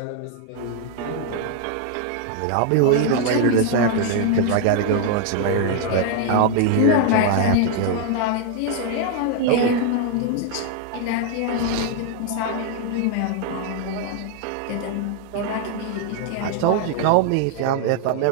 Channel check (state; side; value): different; both; correlation 0.00